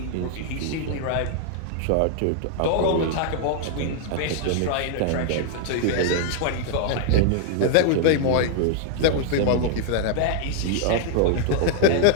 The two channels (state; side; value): different; both; correlation 0.00